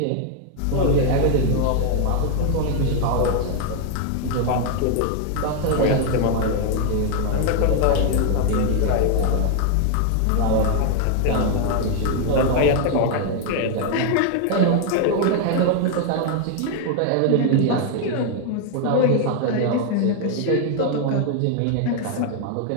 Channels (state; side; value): different; both; correlation 0.00